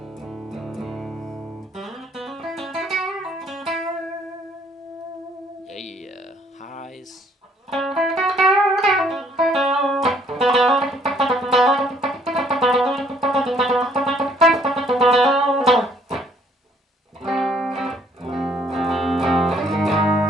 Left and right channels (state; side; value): normal; both; correlation 0.64